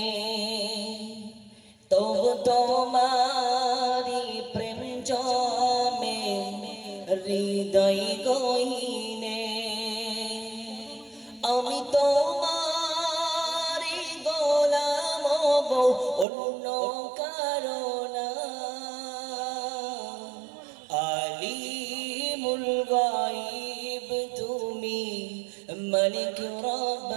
তবু তোমারি প্রেম জমে হৃদয় গহীনে আমি তোমারি গোলাম গো অন্য কারণা আলিমুল গায়ব তুমি মালিক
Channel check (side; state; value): left; drops out; at 16.2 s